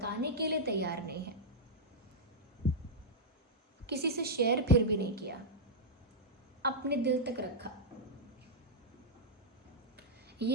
के लिए तैयार नहीं है, किसी से शेयर फिर भी नहीं किया, अपने दिल तक रखा।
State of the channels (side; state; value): both; normal; correlation -0.06